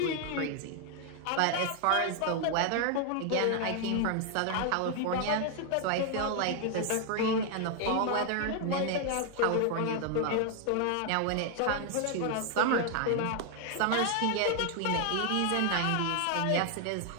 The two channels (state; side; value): different; both; correlation 0.00